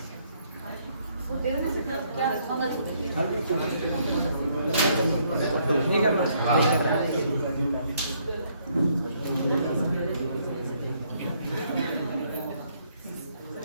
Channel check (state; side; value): inverted; both; correlation -0.70